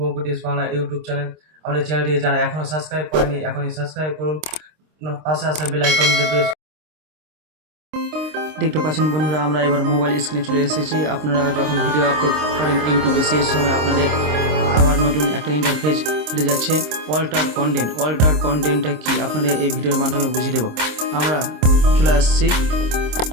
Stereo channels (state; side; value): late; left; 26 ms